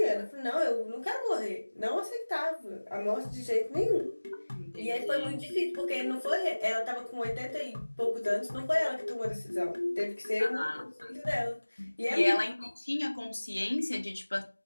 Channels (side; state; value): both; inverted; correlation -1.00